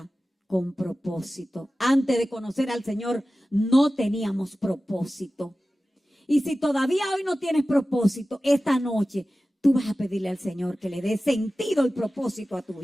con propósito. Antes de conocer al Señor no teníamos propósito. Y si todavía hoy no tienes propósito, esta noche tú vas a pedirle al Señor que le dé sentido y propósito a tu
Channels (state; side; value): normal; both; correlation 0.95